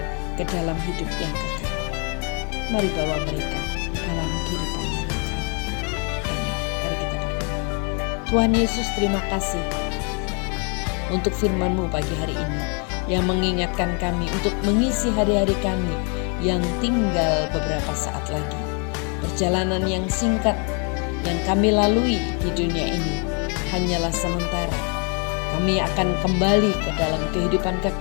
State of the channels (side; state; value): right; quieter; 37.0 dB